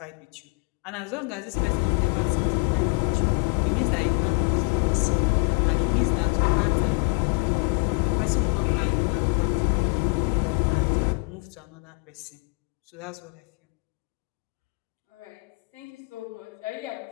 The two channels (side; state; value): right; quieter; 30.8 dB